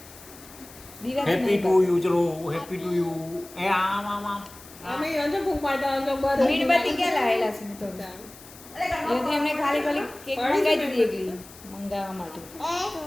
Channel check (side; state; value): left; noise; hiss, 20 dB below the sound